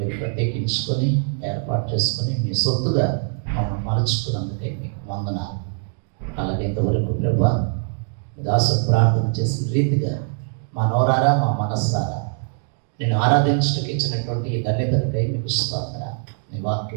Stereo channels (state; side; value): silent; left; 56 dB below the other